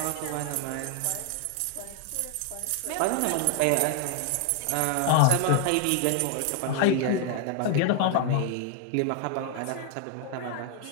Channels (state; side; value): different; both; correlation 0.00